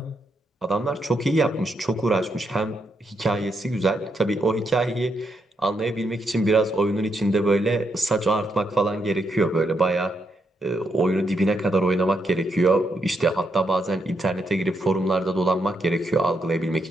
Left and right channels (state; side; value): normal; both; correlation 0.80